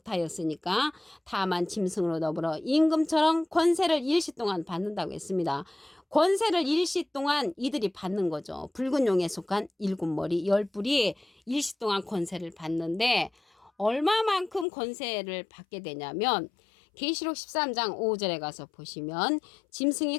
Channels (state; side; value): drops out; right; at 14.7 s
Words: 다만 짐승으로 더불어 임금처럼 권세를 일시 동안 받는다고 했습니다. 권세를 일시 동안 이들이 받는 거죠. 붉은 용에 속한 일곱 머리 열 뿔이 일시 동안 권세를 받는데, 얼마만큼 권세를 받게 되냐면 계시록 13장 5절에 가서 보시면 짐승이